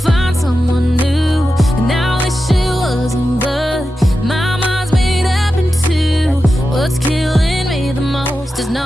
someone new, and I wish it wasn't, but my mind's made up in two. What's killing me the most is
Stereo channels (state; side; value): normal; both; correlation 0.91